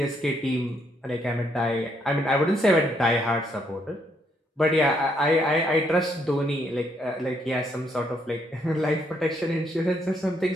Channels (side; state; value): both; normal; correlation 0.73